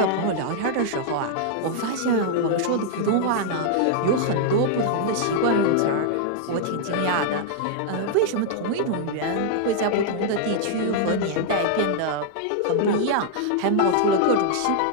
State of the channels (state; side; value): different; both; correlation -0.01